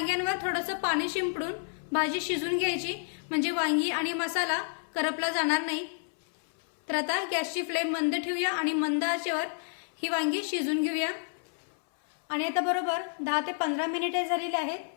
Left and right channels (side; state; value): right; silent; 58 dB below the other